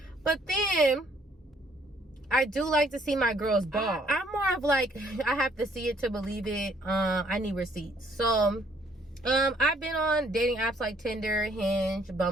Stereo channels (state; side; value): normal; both; correlation 0.64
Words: but then I do like to see my girls ball. I'm more of like, I have to see it to believe it. I need receipts. So I've been on dating apps like Tinder, Hinge,